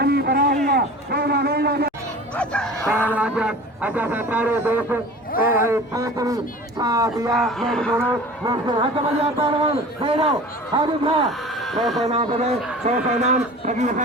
बरा हुआ अच्छा सारे दोस्त पांचवी साथिया मेरे दोनों हट बजा पहलवान फेरो हाजिर था 100 नाम बने 100 नाम फकीर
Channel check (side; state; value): both; normal; correlation 0.40